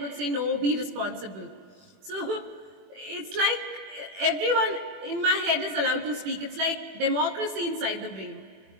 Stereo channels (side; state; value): left; late; 21 ms